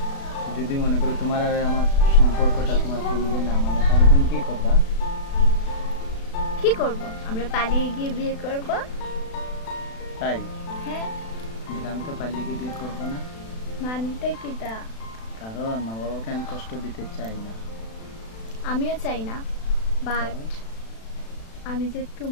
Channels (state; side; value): late; right; 36 ms